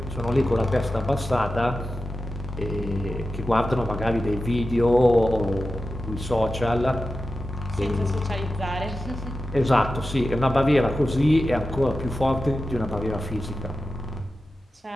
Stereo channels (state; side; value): normal; both; correlation 0.93